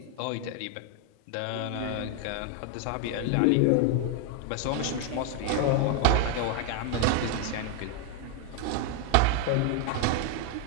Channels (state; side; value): different; both; correlation 0.00